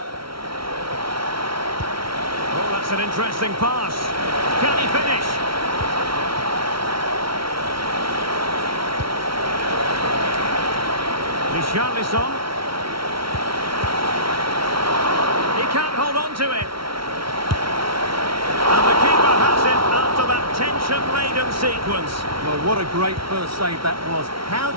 Oh, that's an interesting pass. Can he finish? Richarlison. He can't hold on to it. And the keeper has it after that tension-laden sequence. Well, what a great first save that was. How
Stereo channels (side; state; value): left; late; 0.74 ms